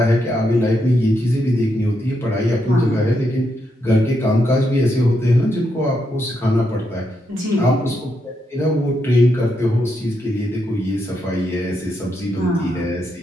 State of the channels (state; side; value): normal; both; correlation 0.81